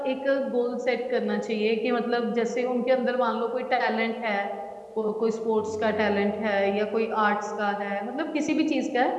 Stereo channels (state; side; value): identical; both; correlation 1.00